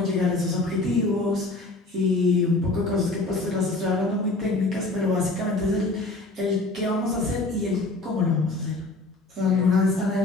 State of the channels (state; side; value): quieter; right; 3.1 dB